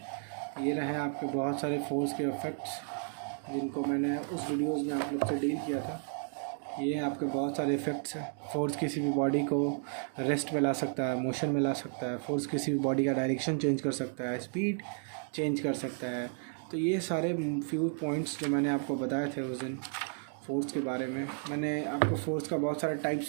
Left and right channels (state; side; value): silent; left; 56 dB below the other